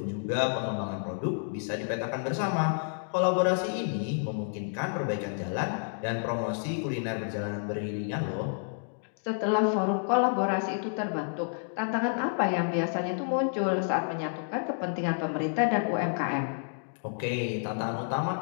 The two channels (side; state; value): right; silent; digital silence